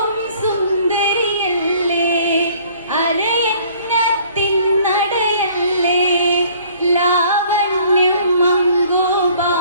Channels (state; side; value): inverted; both; correlation -0.56